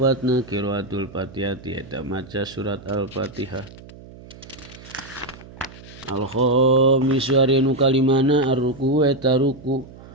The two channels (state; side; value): noise; right; hum, 18 dB below the sound